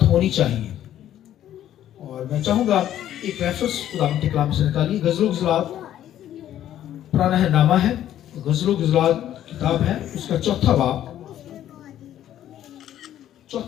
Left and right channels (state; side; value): quieter; right; 11.7 dB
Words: होनी चाहिए। और मैं चाहूंगा एक रेफरेंस खुदावंद के कलाम से निकालिए। गज़लो ग़ज़लात पुराना है नामा है, गज़लो ग़ज़लात किताब है, उसका चौथा